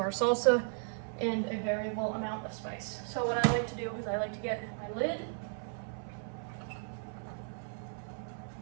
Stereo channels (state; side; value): silent; left; 54 dB below the other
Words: salsa and a variable amount of spice. So what I like to do is I like to get my lid